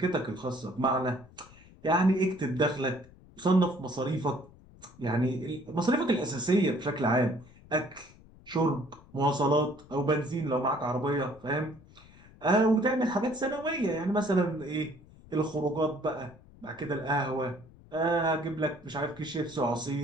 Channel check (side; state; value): left; noise; rumble, 23 dB below the sound